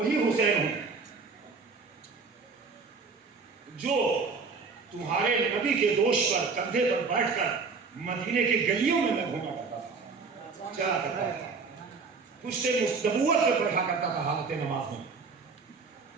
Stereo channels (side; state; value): left; quieter; 4.7 dB